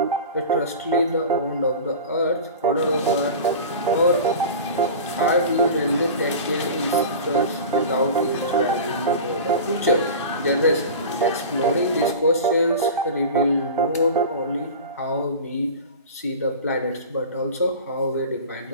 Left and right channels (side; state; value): both; inverted; correlation -0.33